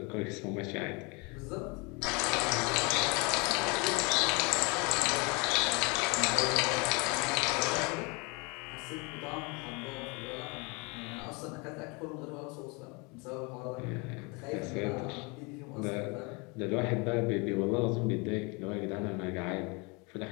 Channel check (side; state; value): right; quieter; 29.6 dB